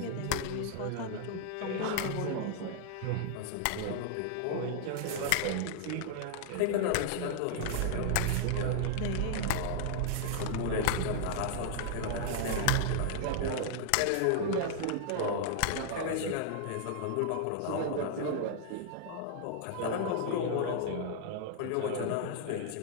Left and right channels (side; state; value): both; different; correlation 0.00